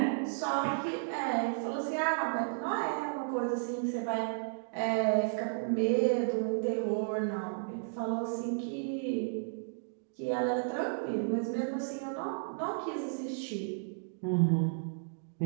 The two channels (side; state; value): left; silent; digital silence